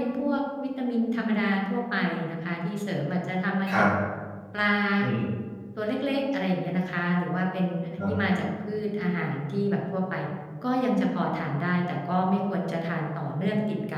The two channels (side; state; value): both; identical; correlation 1.00